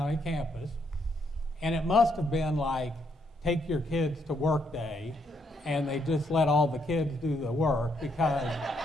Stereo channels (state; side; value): normal; both; correlation 0.74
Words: campus, and it must have been like, take your kids to work day, and they just let all the kids do the work, because